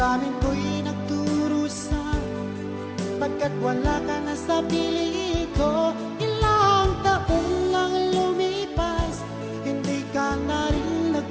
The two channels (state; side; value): identical; both; correlation 1.00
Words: ko'y nagdurusa, pagkat wala ka na sa piling ko. Ilang taon lang lumipas, hindi ka na rin